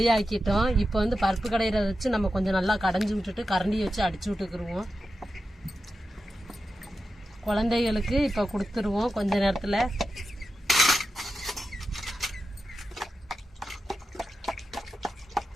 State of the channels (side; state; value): both; normal; correlation 0.91